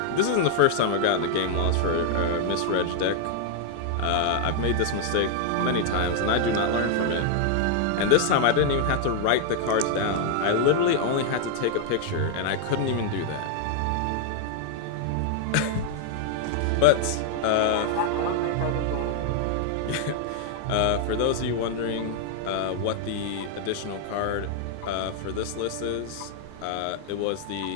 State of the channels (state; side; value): different; both; correlation 0.00